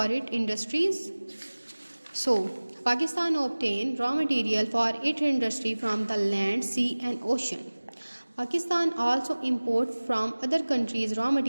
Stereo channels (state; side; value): inverted; both; correlation -1.00